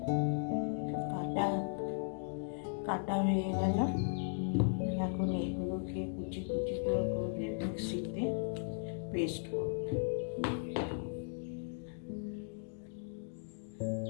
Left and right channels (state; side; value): silent; right; digital silence